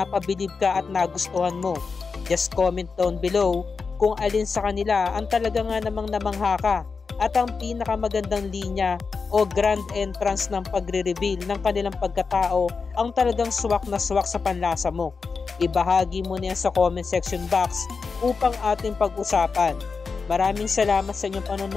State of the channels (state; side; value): quieter; right; 4.9 dB